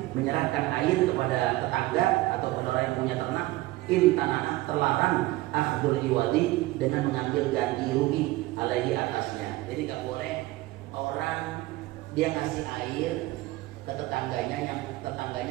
menyerahkan air kepada tetangga atau kepada orang yang punya ternak, intanah, terlarang akhdul iwadi, dengan mengambil ganti rugi alaihi, atasnya. Jadi gak boleh orang dia ngasih air ke tetangganya yang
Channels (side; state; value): left; quieter; 18.7 dB